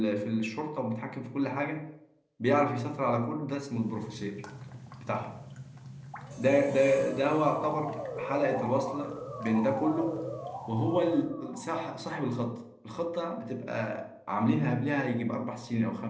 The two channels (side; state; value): both; identical; correlation 1.00